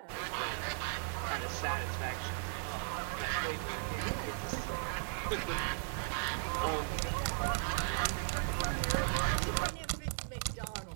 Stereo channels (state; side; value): silent; left; 53 dB below the other